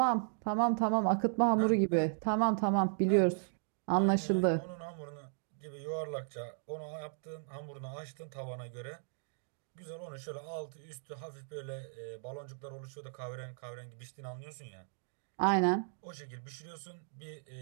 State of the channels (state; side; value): silent; left; digital silence